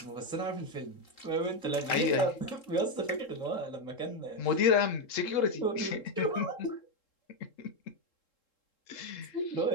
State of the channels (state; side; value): late; right; 3.7 ms